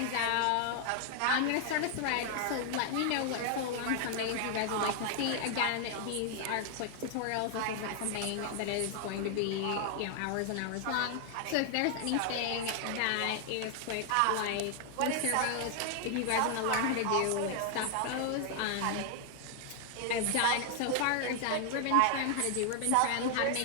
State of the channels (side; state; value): both; different; correlation 0.00